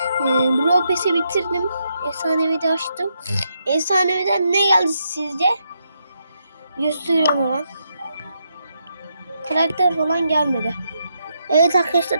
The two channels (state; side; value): inverted; both; correlation -0.80